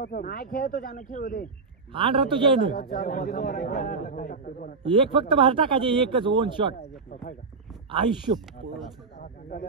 नाही खेळतो त्यानं खेळू दे आण रे तुझ्या एक फक्त बाहेर टाकायचे एकच 1 शॉट आयुष्य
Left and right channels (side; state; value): left; quieter; 4.5 dB